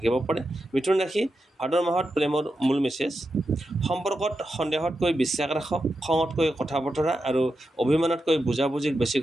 পাৰে। মিথুন ৰাশি ভাদ মাহত প্ৰেমৰ মূল মেছেজ: সম্পৰ্কত সন্দেহতকৈ বিশ্বাস ৰাখক, খঙতকৈ কথা বতৰা আৰু অভিমানতকৈ বুজাবুজিক বেছি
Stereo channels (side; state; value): both; normal; correlation 0.88